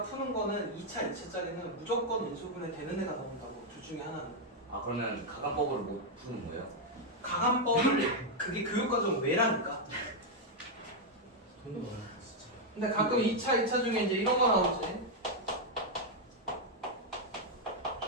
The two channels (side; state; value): both; normal; correlation -0.01